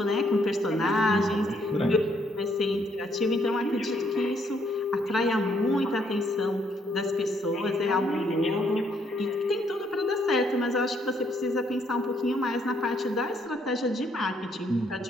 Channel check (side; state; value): both; normal; correlation 0.70